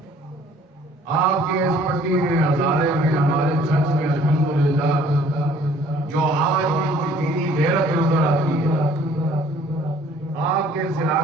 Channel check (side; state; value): both; normal; correlation 0.56